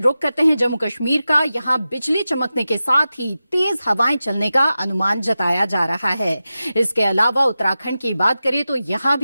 करते हैं जम्मू कश्मीर का। यहां बिजली चमकने के साथ ही तेज हवाएं चलने का अनुमान जताया जा रहा है। इसके अलावा उत्तराखंड की बात करें तो यहां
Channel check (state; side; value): inverted; both; correlation -0.93